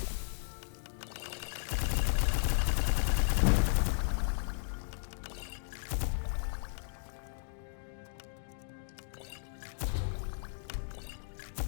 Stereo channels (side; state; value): right; silent; digital silence